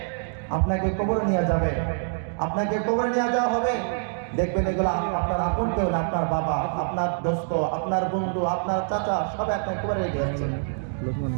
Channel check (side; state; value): left; silent; digital silence